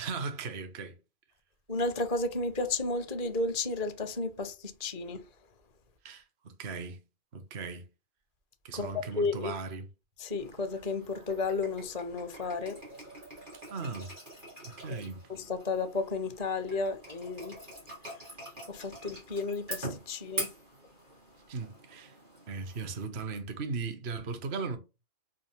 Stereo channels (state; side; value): late; left; 2.4 ms